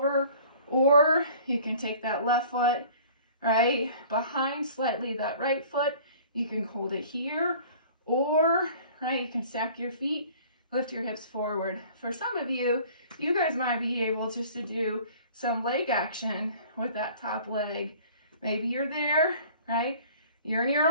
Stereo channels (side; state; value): both; inverted; correlation -0.48